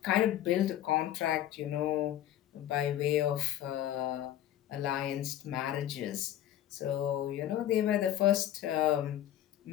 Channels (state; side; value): quieter; right; 12.1 dB